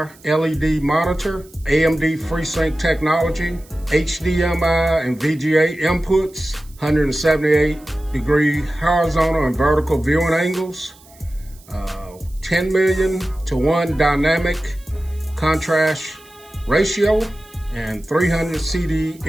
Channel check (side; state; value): right; noise; hiss, 26 dB below the sound